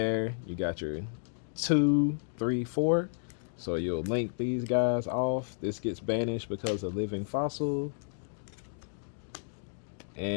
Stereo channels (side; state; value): right; silent; digital silence